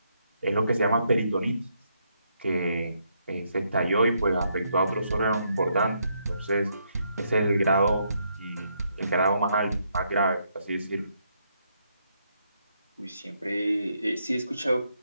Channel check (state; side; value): inverted; both; correlation -0.76